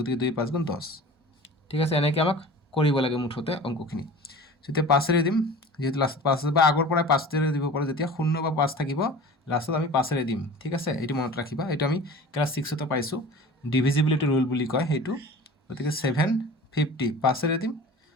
2 5 গুণ 10। ঠিক আছে, এনেকৈ আমাক কৰিব লাগে মুঠতে অংকখিনি। এতিয়া 5ৰে দিম, যিহেতু লাষ্টত 5 আছে, বা আগৰ পৰাই 5ৰে দিব পাৰোঁ, যেতিয়া 0 বা 5 থাকিব লাষ্টত আমি 5ৰে দিম। ঠিক আছে, এইটো মনত ৰাখিবা, এইটো আমি ক্লাছ 6তে পাইছোঁ, ডিভিজিবিলিটি ৰুল বুলি কয় সেইটো। গতিকে 750 5ৰে দিম,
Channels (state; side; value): normal; both; correlation 0.39